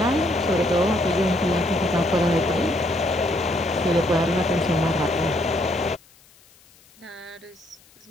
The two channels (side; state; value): left; noise; hiss, 29 dB below the sound